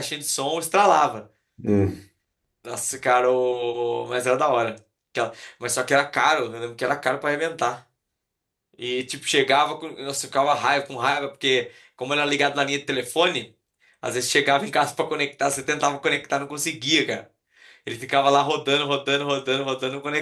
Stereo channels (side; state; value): both; identical; correlation 1.00